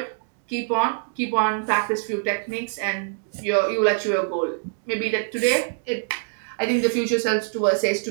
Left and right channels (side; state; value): left; silent; digital silence